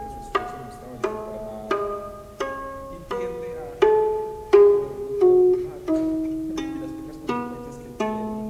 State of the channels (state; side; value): identical; both; correlation 1.00